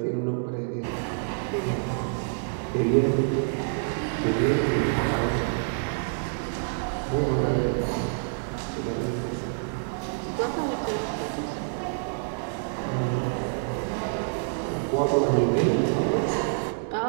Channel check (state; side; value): silent; left; digital silence